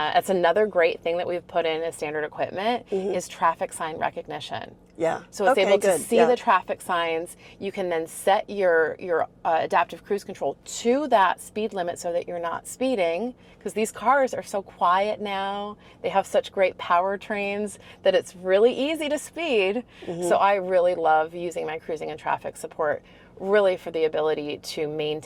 another great thing that we've put in as standard equipment is traffic sign recognition. Yeah. So it's able to see the traffic signs. You can then set your adaptive cruise control to that speed limit so that you're not speeding, because these cars are so quiet now. They have such great powertrains that it's really easy to speed. So I really love using my cruising and traffic support really for the ability to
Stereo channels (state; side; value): identical; both; correlation 1.00